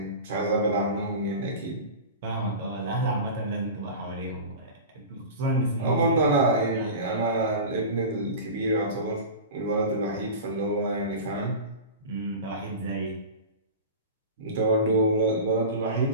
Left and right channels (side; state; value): both; inverted; correlation -0.32